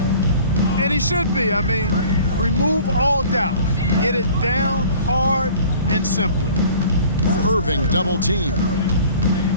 And he should be. I mean, remove all doubt. Get it down hard and simply. Irving double team.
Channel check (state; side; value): inverted; both; correlation -0.49